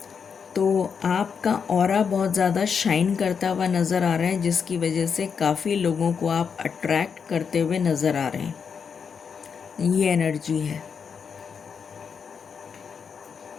तो आपका ऑरा बहुत ज़्यादा शाइन करता हुआ नज़र आ रहा है जिसकी वजह से काफ़ी लोगों को आप अट्रैक्ट करते हुए नज़र आ रहे हैं। ये एनर्जी है।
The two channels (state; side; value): quieter; right; 6.4 dB